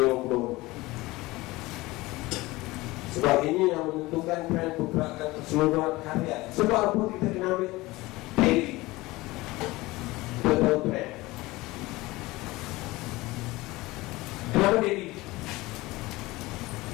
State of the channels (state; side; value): quieter; right; 20.3 dB